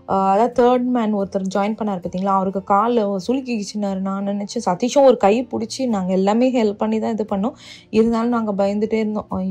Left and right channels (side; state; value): both; identical; correlation 1.00